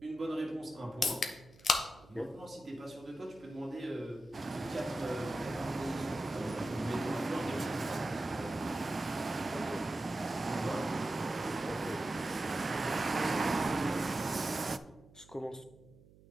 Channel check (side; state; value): right; noise; hum, 24 dB below the sound